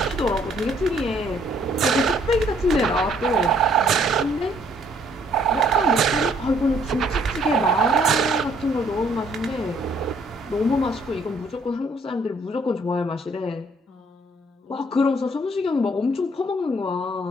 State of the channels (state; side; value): normal; both; correlation 0.64